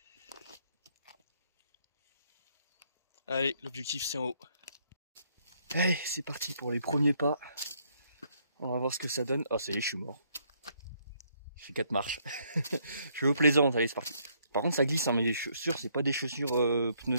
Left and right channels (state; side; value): inverted; both; correlation -0.70